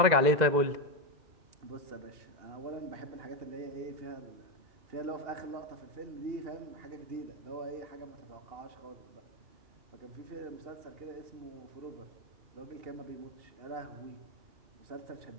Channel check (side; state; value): left; late; 2.0 ms